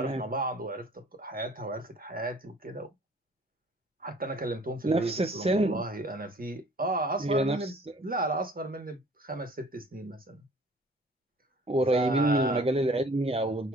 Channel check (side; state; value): both; normal; correlation 0.52